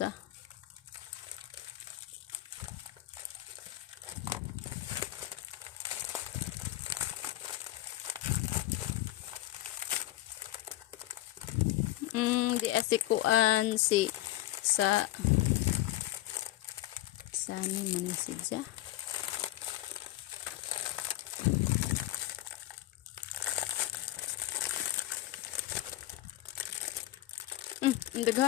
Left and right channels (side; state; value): right; quieter; 16.0 dB